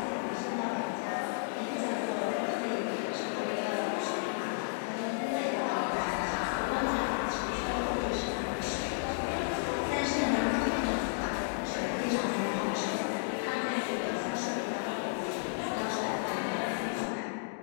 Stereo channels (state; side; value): silent; right; digital silence